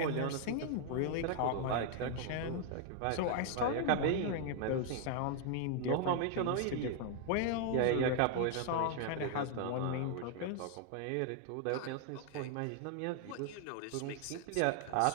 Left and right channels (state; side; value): different; both; correlation 0.00